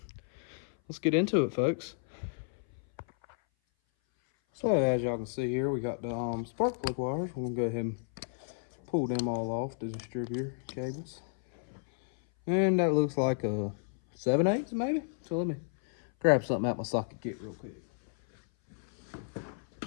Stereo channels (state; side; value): silent; right; 56 dB below the other